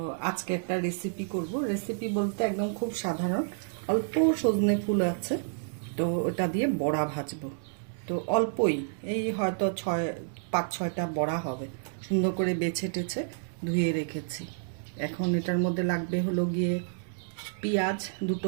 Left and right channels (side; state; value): left; silent; digital silence